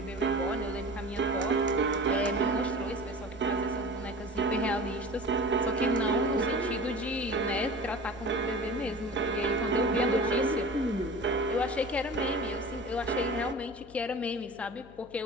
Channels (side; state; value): left; noise; hum, 22 dB below the sound